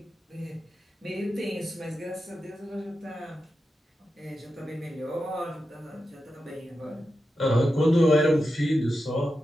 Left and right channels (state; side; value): normal; both; correlation 0.90